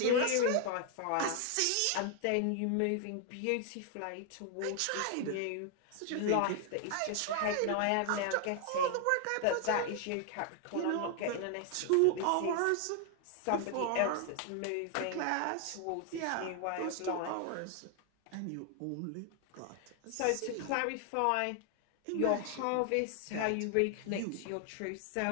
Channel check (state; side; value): different; both; correlation 0.00